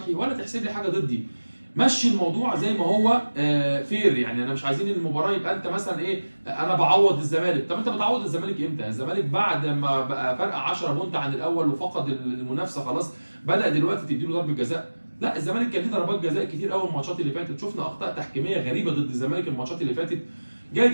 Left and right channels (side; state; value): both; inverted; correlation -1.00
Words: ولا تحسب لي حاجه ضدي. مشي الموضوع زي ما هو فير. يعني انا مش عايزين المباراه يبقى انت مثلا ايه، انا بعوض الزمالك. طب انت بتعوض الزمالك امتى؟ الزمالك بعد ما بقى فرق 10 بونت عن الاول وفقد المنافسه خلاص بدا دلوقتي تديله ضربه جزاء؟ لا، الزمالك كان ليه ضربات جزاء كتير قوي الماتشات اللي فاتت. شفنا اخطاء تحكيميه غريبه ضد الزمالك الماتشات اللي فاتت. جاي